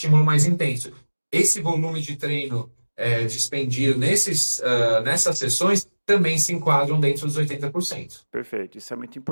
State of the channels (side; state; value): both; inverted; correlation -1.00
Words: mais intenso. Esse volume de treino dispendido nessas sessões também se enquadram dentro dos 80%. Perfeito, isso é muito